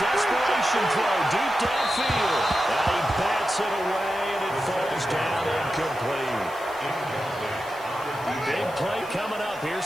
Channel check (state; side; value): noise; left; hiss, 20 dB below the sound